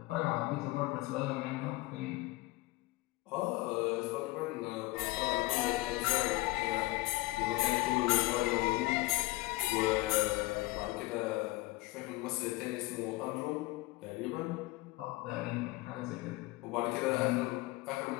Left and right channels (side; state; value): right; quieter; 20.5 dB